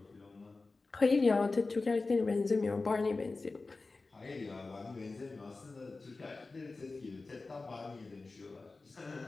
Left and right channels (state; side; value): quieter; right; 3.6 dB